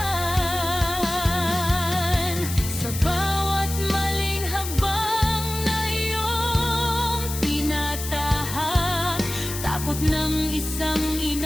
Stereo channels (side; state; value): left; noise; hiss, 8 dB below the sound